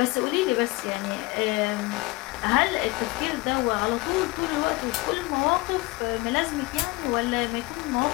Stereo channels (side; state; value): right; quieter; 22.3 dB